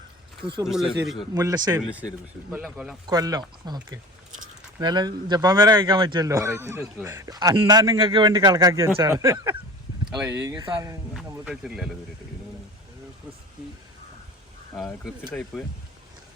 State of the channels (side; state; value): both; normal; correlation 0.37